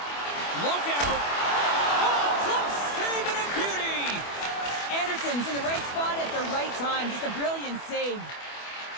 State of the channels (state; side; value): late; right; 25 ms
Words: Look out. Oh, close save and a beauty. Anderson's in the right spot at the right time. Just a brilliant save.